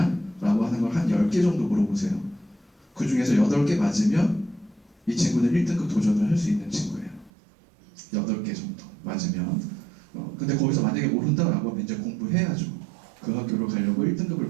라고 하는 걸 한 10개 정도 물어보세요. 그 중에서 8개 맞으면 이 친구는 1등급 도전을 할 수 있는 친구예요. 8개 정도 맞으면. 근데 거기서 만약에 모른다라고 하면 이제 공부해야죠. 그 학교로 가려고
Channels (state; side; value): drops out; left; at 7.3 s